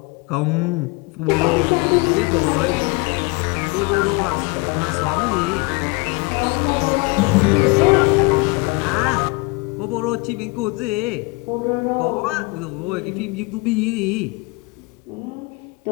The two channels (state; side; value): quieter; right; 26.5 dB